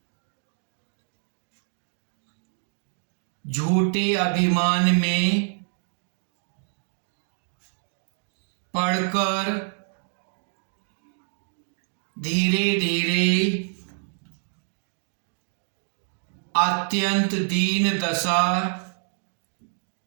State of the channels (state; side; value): silent; left; 56 dB below the other